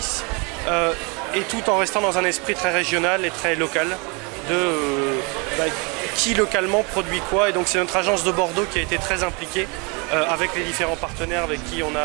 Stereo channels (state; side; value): quieter; left; 31.1 dB